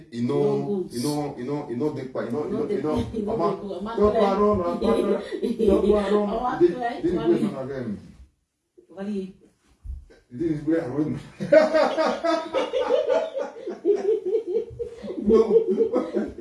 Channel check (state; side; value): identical; both; correlation 1.00